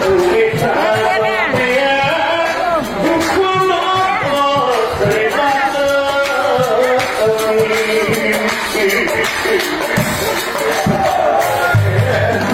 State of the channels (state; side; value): identical; both; correlation 1.00